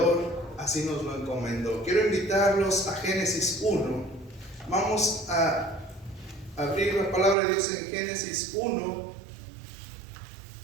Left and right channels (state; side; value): drops out; left; at 7.4 s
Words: así nos lo encomendó. Quiero invitarlos a Génesis 1. Vamos a abrir la palabra de Dios en Génesis 1